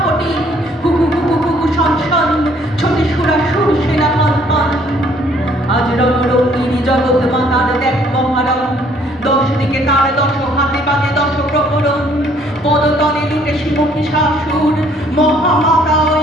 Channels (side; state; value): both; normal; correlation 0.62